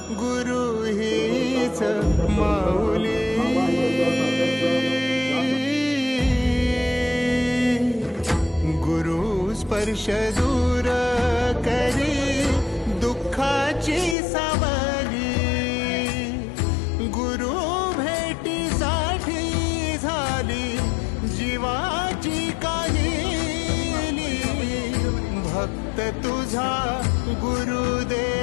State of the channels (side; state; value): right; drops out; at 14.2 s